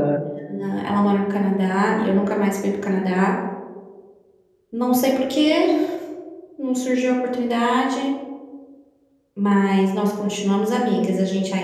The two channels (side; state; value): both; identical; correlation 1.00